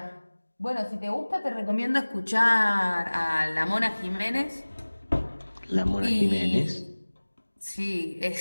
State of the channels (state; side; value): inverted; both; correlation -1.00